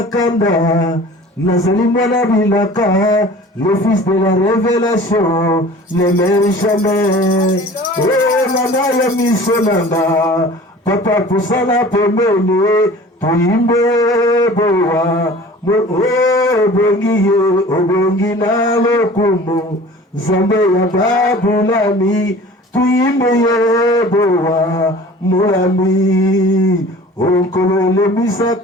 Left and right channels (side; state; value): both; normal; correlation 0.43